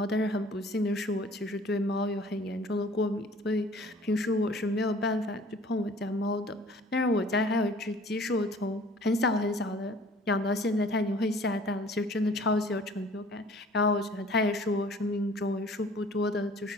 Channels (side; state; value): both; normal; correlation 0.51